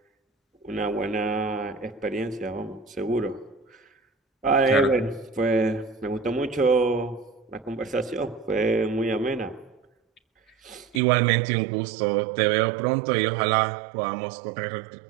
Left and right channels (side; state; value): left; drops out; at 11.0 s